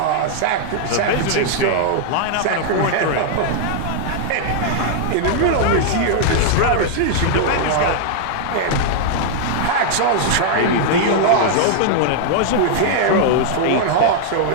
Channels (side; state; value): both; different; correlation -0.01